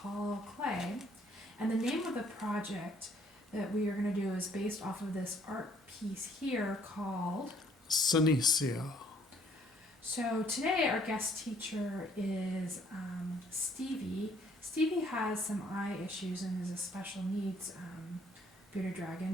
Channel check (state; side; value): normal; both; correlation 0.62